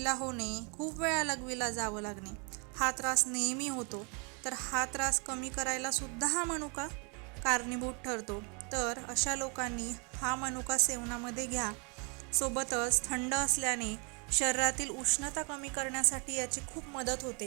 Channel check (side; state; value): left; quieter; 34.8 dB